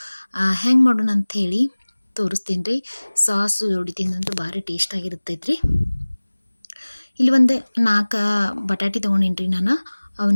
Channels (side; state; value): both; inverted; correlation -1.00